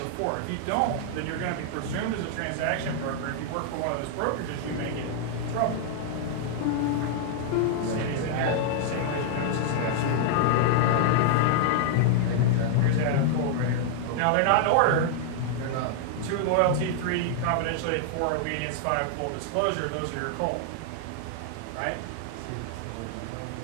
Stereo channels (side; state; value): both; different; correlation -0.01